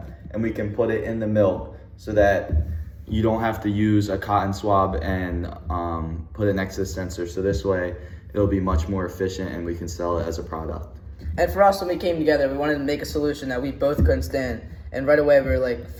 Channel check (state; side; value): identical; both; correlation 1.00